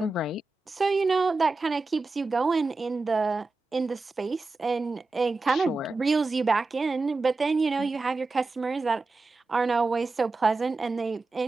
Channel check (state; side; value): quieter; left; 3.6 dB